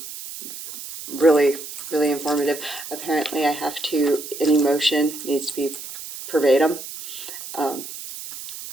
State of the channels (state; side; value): noise; right; hiss, 11 dB below the sound